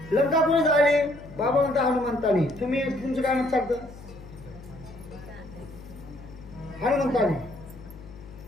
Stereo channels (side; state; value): left; noise; hum, 17 dB below the sound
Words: लंका कोणी जाळली? बाबा म्हणता हनुमंताने. तुम्ही तुमचं काय मत सांगतं? हनुमंताने.